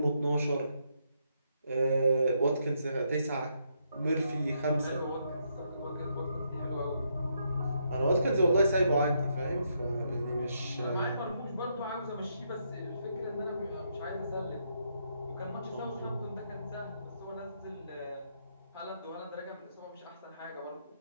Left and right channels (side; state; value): both; inverted; correlation -0.77